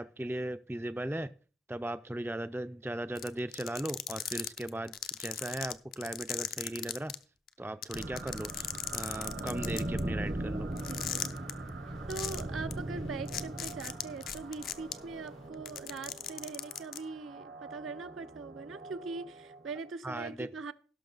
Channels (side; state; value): both; normal; correlation 0.71